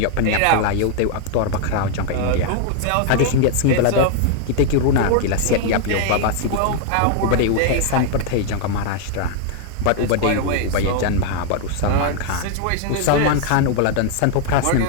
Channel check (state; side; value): different; both; correlation 0.00